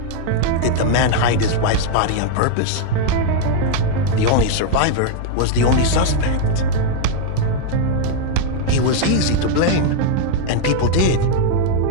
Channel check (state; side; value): different; both; correlation 0.00